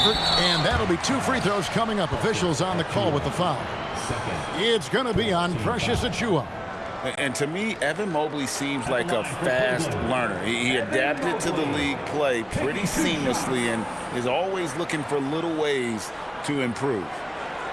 and that'll be 2 free throws coming up. Officials on the call with the foul. It's going to be on Precious Achiuwa. And to me, Evan Mobley seems like a fast learner. He adapted to the league play pretty seamlessly and is always looking for little ways to improve.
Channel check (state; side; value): identical; both; correlation 1.00